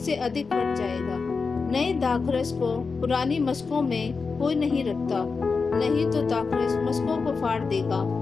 अधिक फट जाएगा। नए दाखरस को पुरानी मशकों में कोई नहीं रखता, नहीं तो दाखरस मशकों को फाड़ देगा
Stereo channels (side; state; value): right; quieter; 4.7 dB